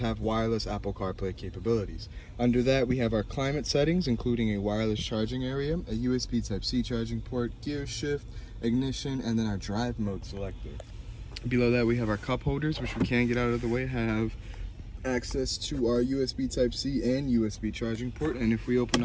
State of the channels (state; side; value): identical; both; correlation 1.00